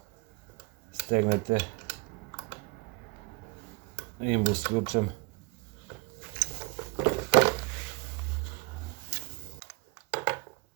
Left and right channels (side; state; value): left; quieter; 27.5 dB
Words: stegnete imbus ključem.